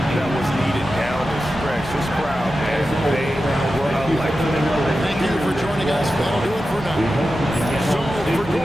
that was needed down the stretch. This crowd, man, they were electric. Thank you for joining us. That'll do it for now. So for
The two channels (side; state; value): both; normal; correlation 0.92